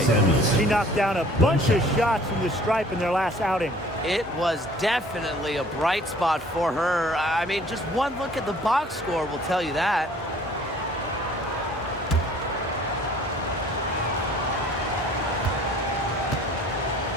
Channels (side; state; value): both; normal; correlation 0.53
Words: She knocked down a bunch of shots from the stripe in their last outing. It was definitely a bright spot for her. I mean, just one look at the box score will tell you that.